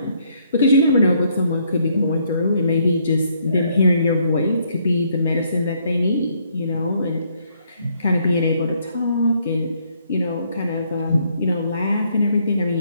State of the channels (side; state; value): both; inverted; correlation -0.69